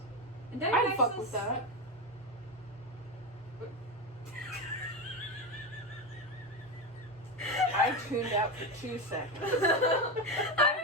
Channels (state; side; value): normal; both; correlation 0.16